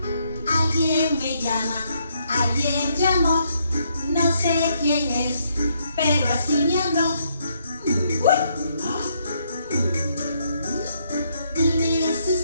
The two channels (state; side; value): inverted; both; correlation -0.73